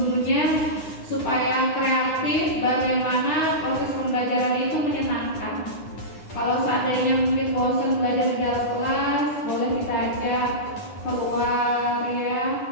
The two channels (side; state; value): right; late; 9.9 ms